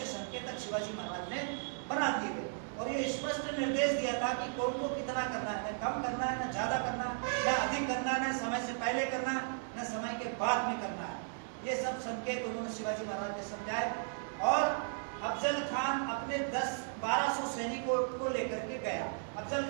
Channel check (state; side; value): silent; left; digital silence